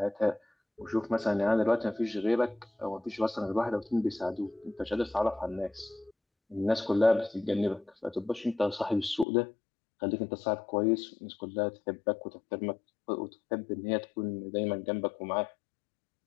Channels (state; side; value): drops out; right; at 9.2 s